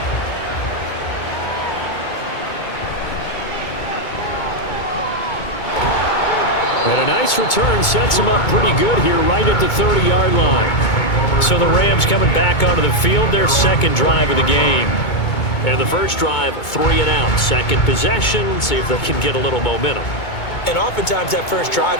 And a nice return sets him up pretty good here right at the 30-yard line. So the Rams coming back onto the field, their 2nd drive of the game. And the first drive, 3 and out. 2nd possession, see if they can get a little momentum. And oftentimes that first drive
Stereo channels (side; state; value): right; late; 2.2 ms